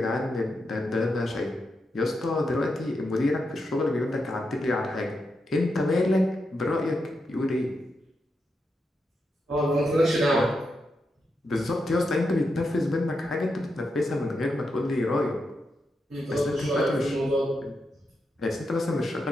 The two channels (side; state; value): both; normal; correlation 0.85